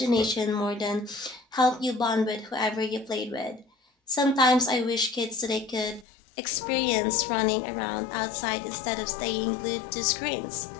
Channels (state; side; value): drops out; right; at 6.1 s